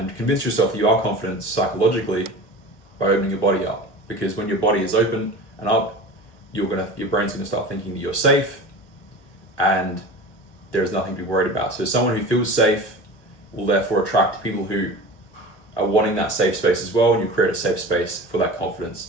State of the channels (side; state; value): right; late; 1.2 ms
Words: convince yourself that you are confident psychologically by opening your body up. Because when your body is open and up, your brain's gonna start thinking that you're safe and there's nothing to be worried about. So someone who feels safe will therefore attract people who are wanting that safe space as well, and you create a safe space for that